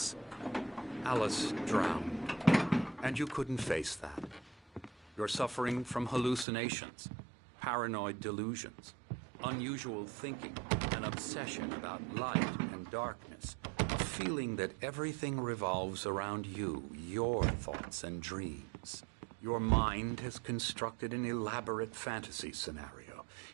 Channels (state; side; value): drops out; left; at 6.5 s